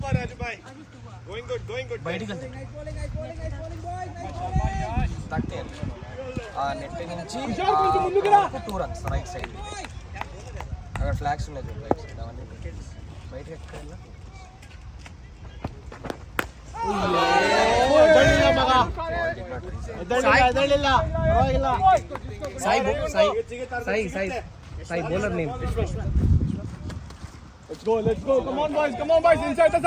Raju bhai. Going good. బయటికి వెళ్తే తక్కే ఆ net నుంచి 2 runs right side. అక్కడ flags ఉన్నాయి చూడు right side అవన్నీ బయటికి ఎక్కడ Sai bowler name. Let's go. Come on, boys. Inside the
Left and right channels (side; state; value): both; identical; correlation 1.00